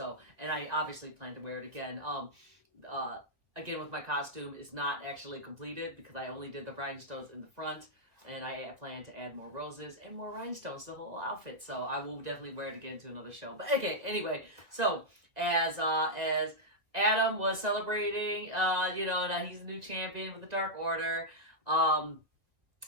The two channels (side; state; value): left; late; 2.0 ms